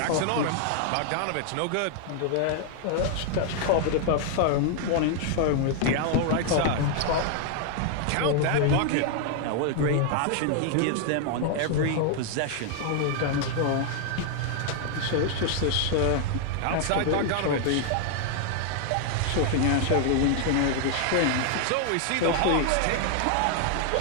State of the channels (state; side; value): different; both; correlation 0.00